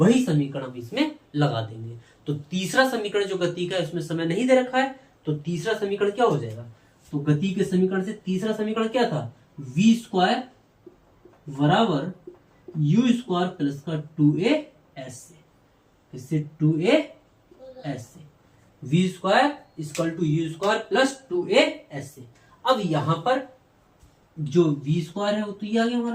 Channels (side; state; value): both; identical; correlation 1.00